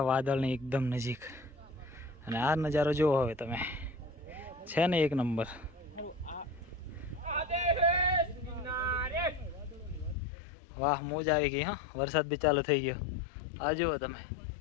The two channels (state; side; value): drops out; right; at 10.2 s